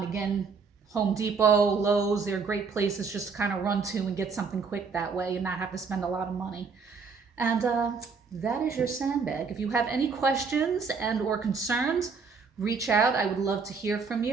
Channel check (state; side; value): quieter; left; 5.1 dB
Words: Again, Home Depot, Lowe's, they're great places just to kind of run to and get something quick that way and not have to spend a lot of money. And that is your sandbag. If you have any questions and or concerns, reach out. I would love to hear from